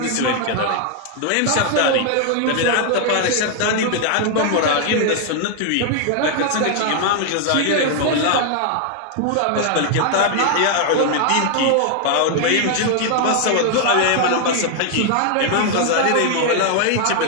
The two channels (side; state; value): both; different; correlation 0.00